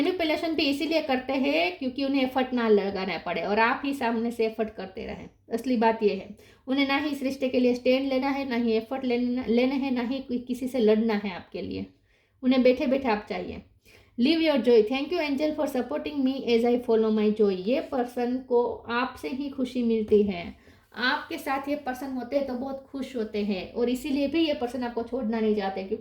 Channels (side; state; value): both; identical; correlation 1.00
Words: भी इसीलिए करते हैं क्योंकि उन्हें एफर्ट ना लगाना पड़े और आप ही सामने से एफर्ट करते रहें। असली बात ये है, उन्हें ना ही इस रिश्ते के लिए स्टैंड लेना है, ना ही एफर्ट लेने हैं, ना ही किसी से लड़ना है आपके लिए। उन्हें बैठे बैठे आप चाहिए। Live your joy. Thank you angel for supporting me as I follow my joy. ये पर्सन को आपसे ही खुशी मिलती है। आपके साथ ये पर्सन होते हैं तो बहुत खुश होते हैं और इसीलिए भी ये पर्सन आपको छोड़ना नहीं चाहते